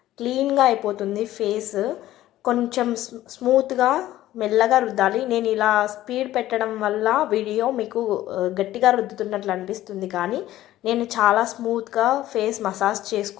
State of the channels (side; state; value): right; quieter; 14.4 dB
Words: క్లీన్గా అయిపోతుంది ఫేస్. కొంచెం స్మూత్గా మెల్లగా రుద్దాలి. నేను ఇలా స్పీడ్ పెట్టడం వల్ల వీడియో మీకు గట్టిగా రుద్దుతున్నట్లు అనిపిస్తుంది, కానీ నేను చాలా స్మూత్గా ఫేస్ మసాజ్